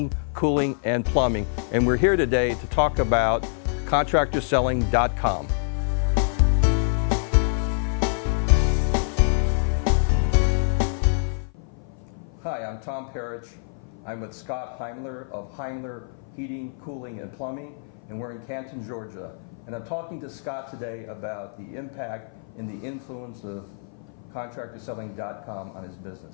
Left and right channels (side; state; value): right; silent; 56 dB below the other